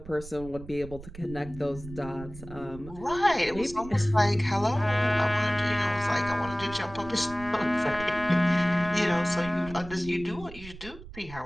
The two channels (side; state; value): right; noise; rumble, 15 dB below the sound